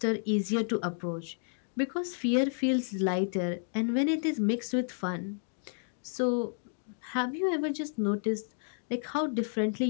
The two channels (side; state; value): right; silent; digital silence